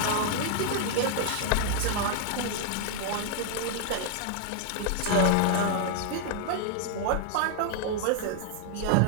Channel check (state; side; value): different; both; correlation 0.00